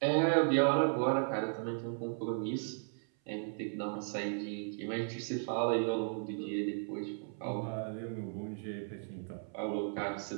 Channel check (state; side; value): silent; left; 54 dB below the other